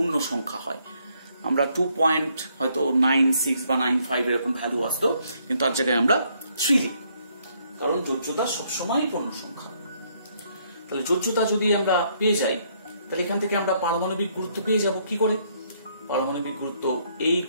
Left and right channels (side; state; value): both; inverted; correlation -0.70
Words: সংখ্যা হয়। আমরা 2 হয়তো 96 বা 95 এরকম ভ্যালু আসতো, কিন্তু তার জায়গায় আমরা 3 লিখব, কারণ যোজ্যতা সবসময় পূর্ণ সংখ্যা। তাহলে যোজ্যতা যদি আমরা পেয়ে যাই তাহলে এখান থেকে আমরা পারমাণবিক গুরুত্ব পেয়ে যাব কি করে, পারমাণবিক গুরুত্ব A